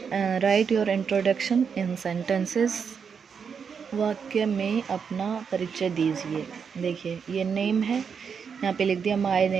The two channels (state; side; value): quieter; left; 6.5 dB